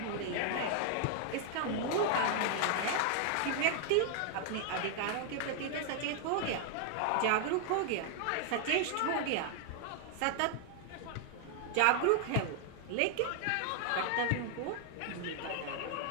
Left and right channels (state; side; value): different; both; correlation 0.00